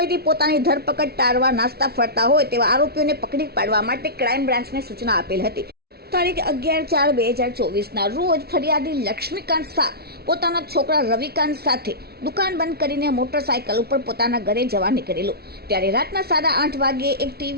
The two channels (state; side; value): late; left; 0.45 ms